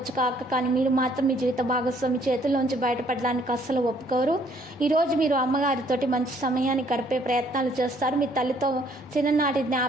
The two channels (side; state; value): both; normal; correlation 0.64